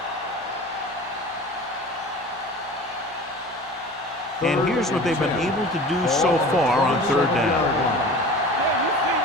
And here's what they've been able to do so far on 3rd down.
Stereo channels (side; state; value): both; normal; correlation 0.39